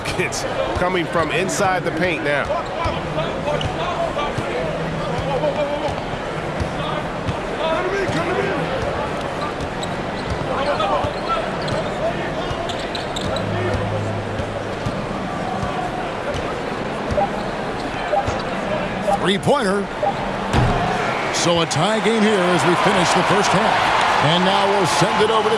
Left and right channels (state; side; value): identical; both; correlation 1.00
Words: coming from inside the paint now. Three-pointer. So a tie game here as we finish the first half. And now we'll send it over to